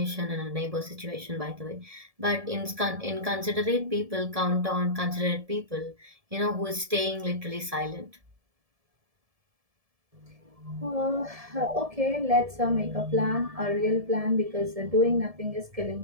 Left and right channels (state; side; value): late; left; 1.7 ms